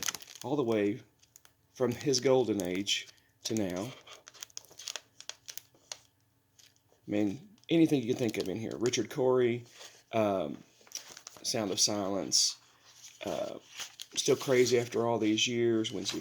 all the way from his golden age to now. I mean, anything you can think of in here. Richard Cory, um, Sound of Silence, uh, Still Crazy After All These Years, Wednesday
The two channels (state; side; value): identical; both; correlation 1.00